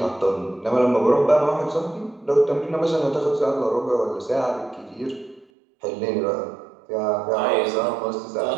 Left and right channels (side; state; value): left; drops out; at 5.5 s